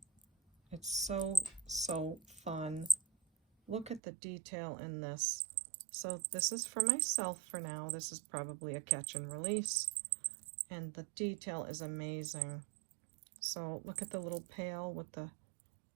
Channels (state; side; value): drops out; left; at 4.0 s